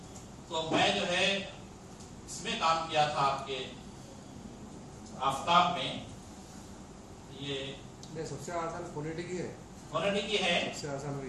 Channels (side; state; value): both; identical; correlation 1.00